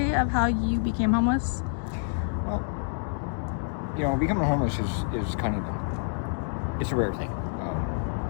of how you became homeless. Well, becoming homeless is kind of, it's a rare thing.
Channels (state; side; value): silent; right; digital silence